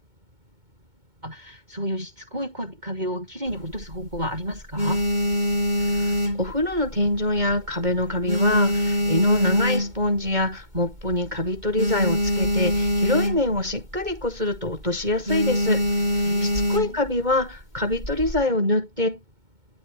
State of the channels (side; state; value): left; late; 2.2 ms